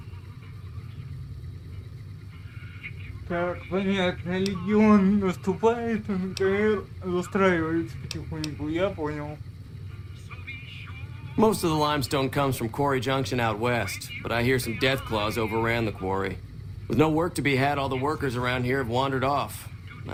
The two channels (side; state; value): both; identical; correlation 1.00